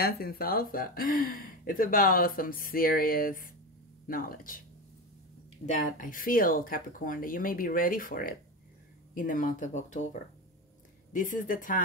salsa. It's about some serious knowledge that I feel, Capricorn, that you may be ready for it in the month of October. This is the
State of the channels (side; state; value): both; normal; correlation 0.20